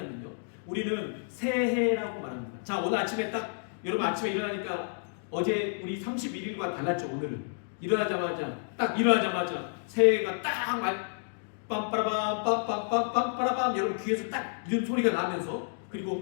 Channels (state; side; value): silent; right; digital silence